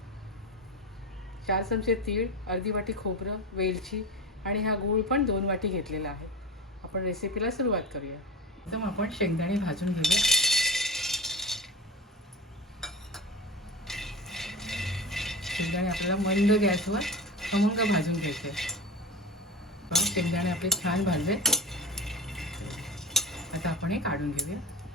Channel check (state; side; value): normal; both; correlation 0.28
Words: 4 चमचे तीळ, अर्धी वाटी खोबरं, वेलची आणि हा गूळ पण 2 वाटी घेतलेला आहे. आपण रेसिपीला सुरुवात करूया. एकदम आपण शेंगदाणे भाजून घेऊया. शेंगदाणे आपल्याला मंद गॅसवर खमंग भाजून घ्यायचे. शेंगदाणे आपले छान भाजले. आता आपण हे काढून घेऊया.